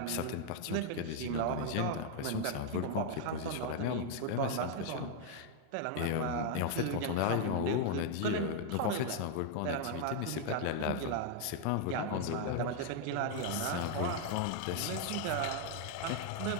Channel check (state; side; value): different; both; correlation 0.00